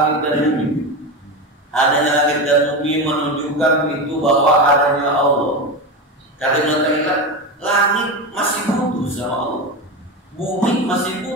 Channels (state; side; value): normal; both; correlation 0.19